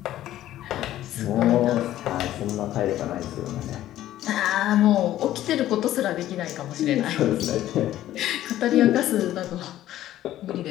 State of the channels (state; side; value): quieter; right; 13.4 dB